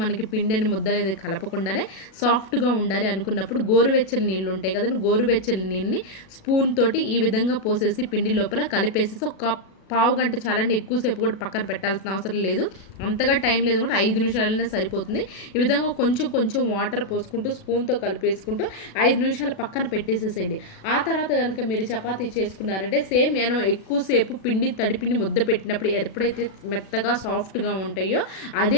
మనకి పిండిని ముద్ద అనేది కలపకుండానే సాఫ్ట్గా ఉండాలి అనుకున్నప్పుడు గోరువెచ్చని నీళ్ళు ఉంటాయి కదండి, గోరువెచ్చని నీళ్ళని స్పూన్ తోటి ఈ విధంగా పోసేసి పిండి లోపల కలిపేసేసి ఒక పావు గంట చాలండి, ఎక్కువసేపు కూడా పక్కన పెట్టాల్సిన అవసరం లేదు. అంతగా టైం లేదు కూడా 5 నిమిషాలైనా సరిపోతుంది. ఈ విధంగా కొంచెం కొంచెం వాటర్ పోసుకుంటూ స్పూన్తో కలిపేసుకుంటూ 5 నిమిషాలు పక్కన పెట్టేసేసేయండి. ఆ తర్వాత కనుక మీరు చపాతీ చేసుకున్నారంటే సేమ్ నేను ఎక్కువసేపు పిండి తడిపిండి ముద్ద పెట్టినప్పుడు ఎప్పుడైతే మెత్తగా సాఫ్ట్గా ఉంటాయో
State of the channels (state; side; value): late; right; 37 ms